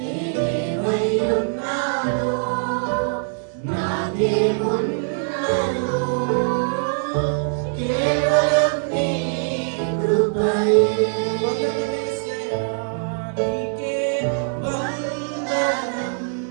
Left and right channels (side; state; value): left; silent; digital silence